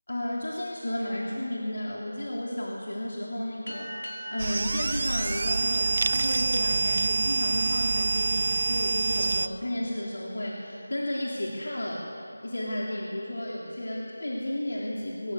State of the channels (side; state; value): both; inverted; correlation -0.96